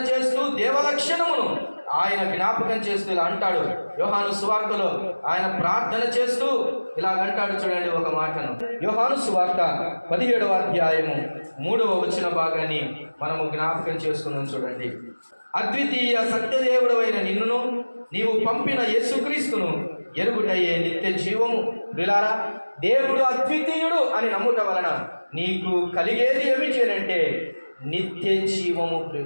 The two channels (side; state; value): both; inverted; correlation -1.00